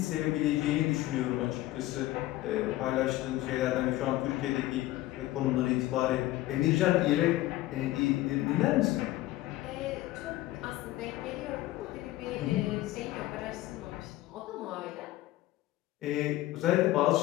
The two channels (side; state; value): right; quieter; 16.4 dB